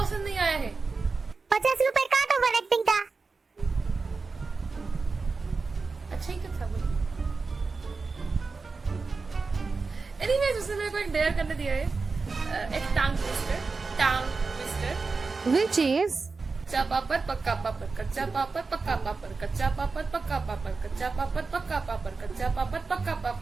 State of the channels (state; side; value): quieter; left; 4.3 dB